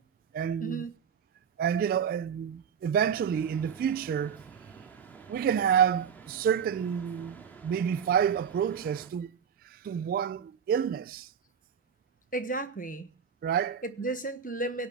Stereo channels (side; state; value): left; quieter; 7.5 dB